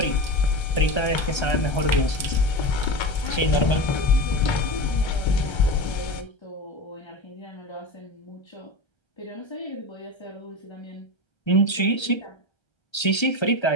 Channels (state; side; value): late; right; 1.3 ms